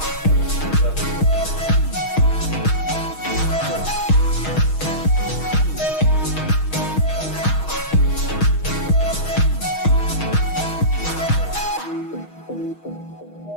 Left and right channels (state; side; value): late; right; 6.3 ms